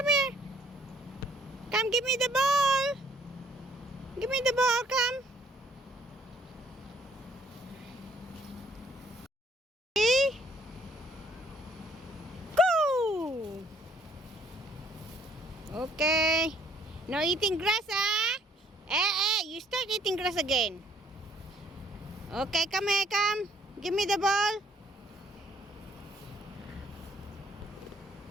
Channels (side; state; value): both; normal; correlation 0.63